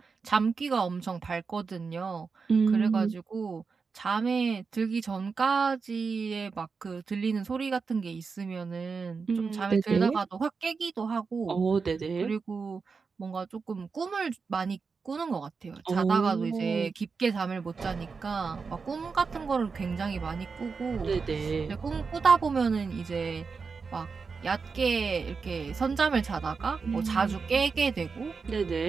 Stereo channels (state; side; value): quieter; left; 5.0 dB